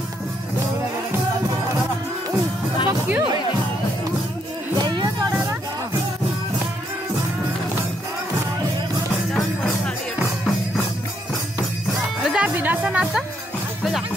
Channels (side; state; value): both; normal; correlation 0.74